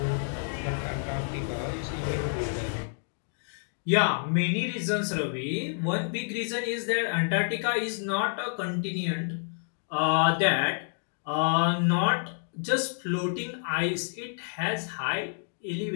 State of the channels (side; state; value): right; silent; digital silence